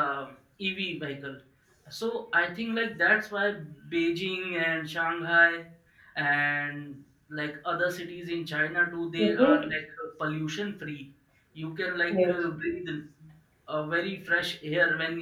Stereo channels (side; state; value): both; identical; correlation 1.00